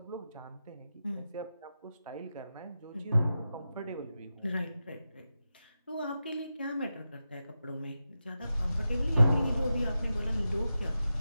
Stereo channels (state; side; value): inverted; both; correlation -0.90